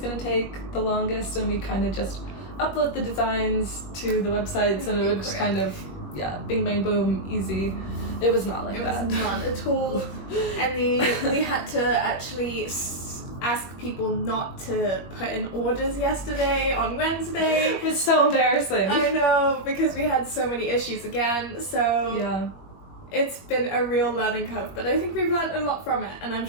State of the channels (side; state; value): right; late; 21 ms